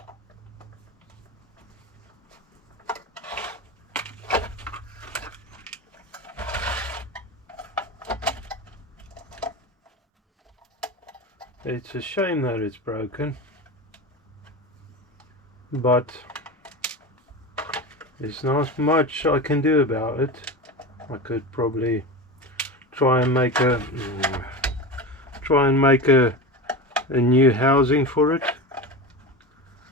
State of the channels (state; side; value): normal; both; correlation 0.26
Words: It's a shame that it's broken, but there's not much I can do about it. I could probably try and make a new housing for it,